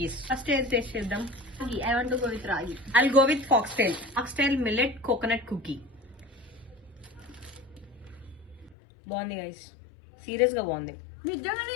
First taste చేద్దాం. Ragi. I want to go with Ragi. I'll go with foxtail. Foxtail millet coconut cookie. బాగుంది గైస్, సీరియస్ గా బాగుంది.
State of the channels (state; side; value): drops out; right; at 8.8 s